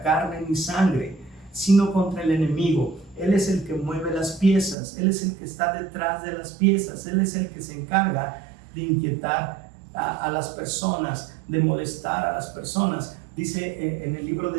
carne ni sangre, sino contra el enemigo. Él es el que mueve las piezas, Él es el que está detrás de las piezas, Él es el que se encarga de inquietar a las personas, de molestar a las personas. Dice en el libro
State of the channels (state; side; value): drops out; left; at 4.8 s